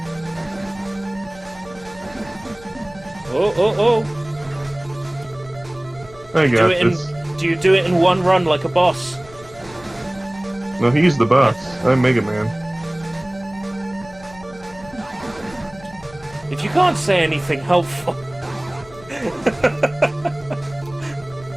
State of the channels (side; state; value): left; noise; rumble, 22 dB below the sound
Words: Oh. I got this. Do you do it in one run like a boss? No, he's the boss. I'm Mega Man. If you can't say anything helpful...